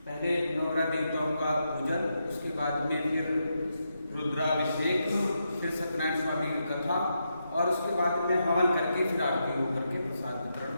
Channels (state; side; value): inverted; both; correlation -0.84